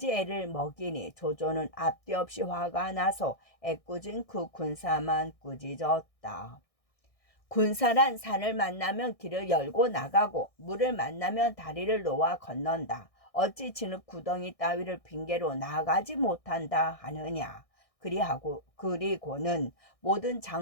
애를 먹이니 조조는 앞뒤 없이 화가 나서 애꿎은 그 군사만 꾸짖었다. 군사란 산을 만나면 길을 열고 나가고 물을 만나면 다리를 놓아 건넌다. 어찌 진흙 구덩이 따위를 핑계로 나가지 못한다 하느냐. 그리고는 모든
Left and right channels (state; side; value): late; right; 1.6 ms